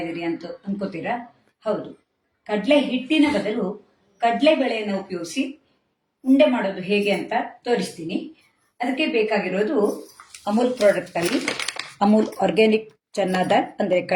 ಇದ್ದೀರಿ ಅಂತ ಅನ್ಕೋತೀರಾ? ಹೌದು, ಕಡಲೆ ಹಿಟ್ಟಿನ ಬದಲು ಕಡಲೆಬೇಳೆಯನ್ನು ಉಪಯೋಗಿಸಿ ಉಂಡೆ ಮಾಡೋದು ಹೇಗೆ ಅಂತ ತೋರಿಸ್ತೀನಿ. ಅದಕ್ಕೆ ಬೇಕಾಗಿರೋದು ಅಮೂಲ್ ಪ್ರಾಡಕ್ಟ್ ಅಲ್ಲಿ ಅಮೂಲ್ ಆರ್ಗ್ಯಾನಿಕ್ ಚನ್ನಾ ದಾಲ್ ಅಂದರೆ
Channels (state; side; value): identical; both; correlation 1.00